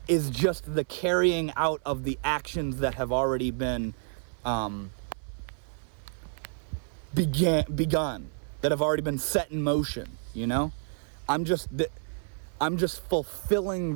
is just the carrying out of the actions that have already been begun, that have already been set in motion, you know? I'm just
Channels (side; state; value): left; silent; 56 dB below the other